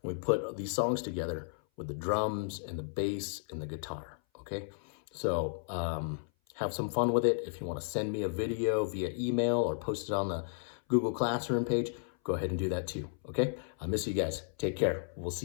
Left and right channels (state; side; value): silent; right; 55 dB below the other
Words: we put these songs together with the drums and the bass and the guitar, okay? So have some fun with it. If you want to send me a video via email or post it on the Google Classroom page, go ahead and do that too, okay? I miss you guys. Take care. We'll